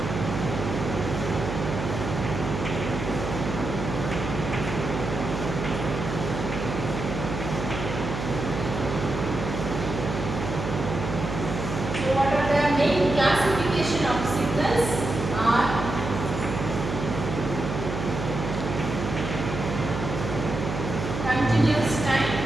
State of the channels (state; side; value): noise; right; hum, 5 dB below the sound